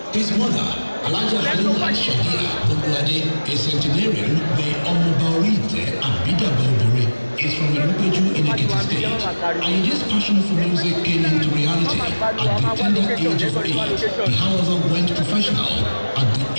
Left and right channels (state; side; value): inverted; both; correlation -1.00